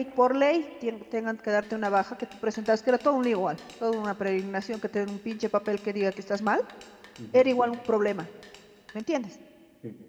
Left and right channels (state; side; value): identical; both; correlation 1.00